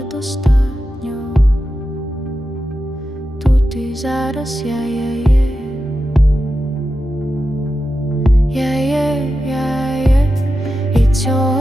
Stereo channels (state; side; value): normal; both; correlation 0.90